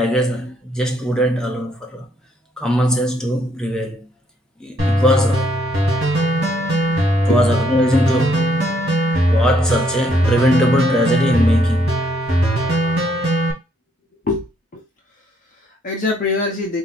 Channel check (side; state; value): both; normal; correlation 0.70